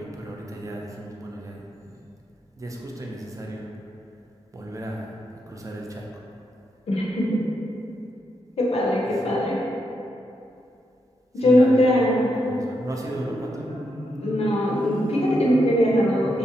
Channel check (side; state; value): both; normal; correlation 0.82